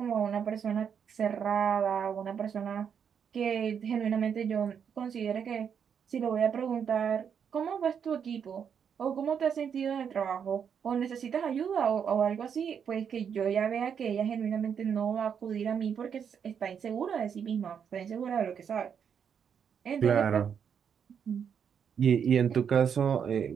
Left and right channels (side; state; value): left; quieter; 7.5 dB